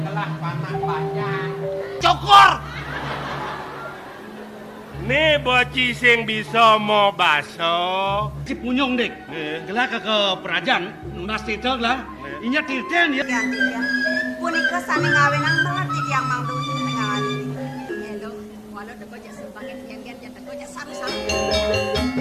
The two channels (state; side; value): identical; both; correlation 1.00